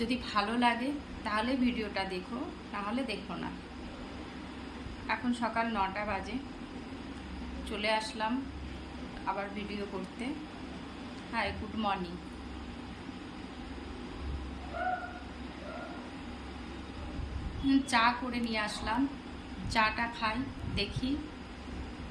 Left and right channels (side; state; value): both; identical; correlation 1.00